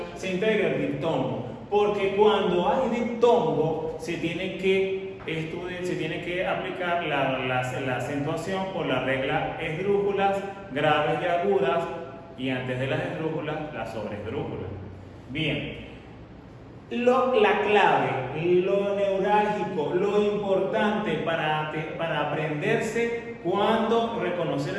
se integra el diptongo. Porque cuando hay diptongo, se tiene que aplicar la acentuación por la regla esdrújulas graves y agudas, y antes de las esdrújulas, las sobreesdrújulas. Bien. La clave, lo neurálgico, lo importante para aprenderse cuando reconocer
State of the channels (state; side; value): identical; both; correlation 1.00